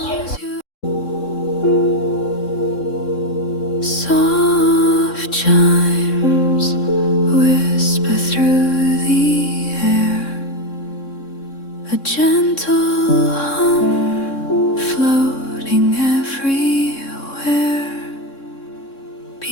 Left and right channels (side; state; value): right; late; 3.6 ms